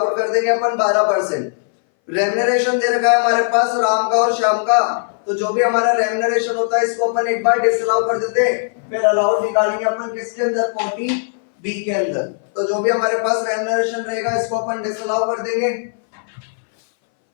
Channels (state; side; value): silent; right; 62 dB below the other